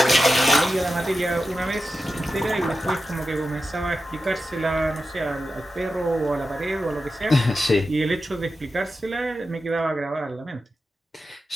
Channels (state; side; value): normal; both; correlation 0.91